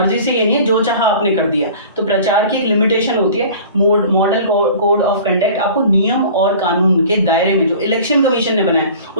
से ये नहीं है जो चाहा आपने कर दिया. तो प्रचार की एक लिमिटेशन होती है. मॉडल कोड ऑफ कंडक्ट आपको नियम और कानून के दायरे में जो इलेक्शन कमीशन ने बनाया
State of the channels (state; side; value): inverted; both; correlation -0.43